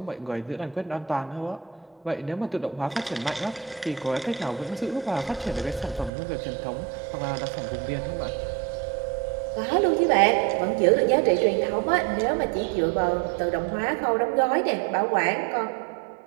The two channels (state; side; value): drops out; left; at 6.1 s